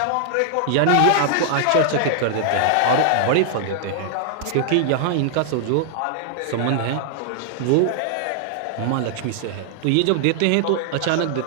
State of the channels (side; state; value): both; different; correlation 0.00